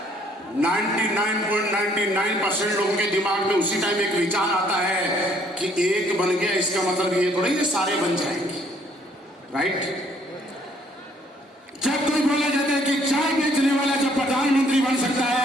99.99% लोगों के दिमाग में उसी टाइम एक विचार आता है कि एक बन गया इसका मतलब ये थोड़ा ये सारे बन जाएंगे, राइट? जब कोई बोला जाता है कि चाय बेचने वाला जब प्रधानमंत्री बन सकता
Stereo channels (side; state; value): both; normal; correlation 0.63